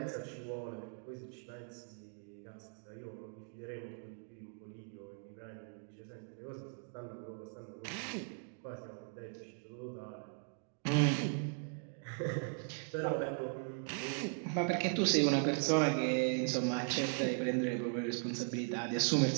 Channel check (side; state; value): left; silent; 52 dB below the other